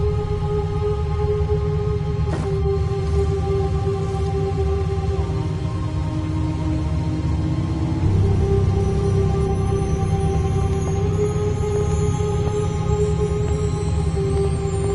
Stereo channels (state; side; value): identical; both; correlation 1.00